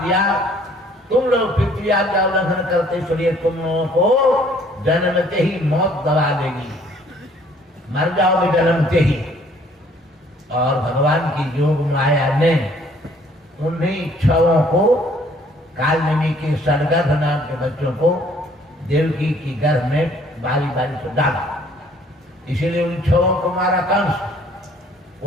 दिया, तुम लोग पितृ आज्ञा उल्लंघन करते इसलिए तुम लोगों को जन्मते ही मौत दबा देगी, मर जाओगे जन्मते ही। और भगवान की योग माया ने उन्हीं 6 को, कालनेमी के सड़गर्भ नाम के बच्चों को देवकी की गर्भ में बारी बारी से डाला। इसीलिए उन 6 को मारा कंस।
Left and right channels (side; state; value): both; normal; correlation 0.59